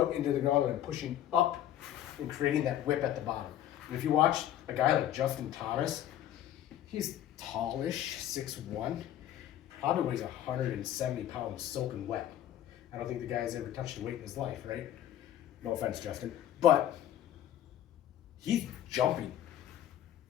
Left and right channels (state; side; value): quieter; right; 11.6 dB